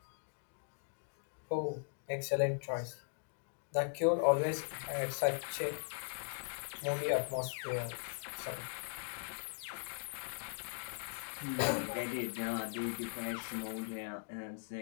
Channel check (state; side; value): silent; right; digital silence